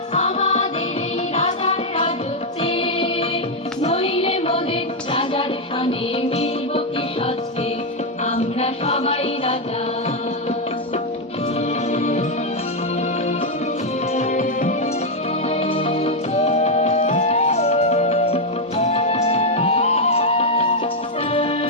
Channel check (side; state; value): both; normal; correlation 0.01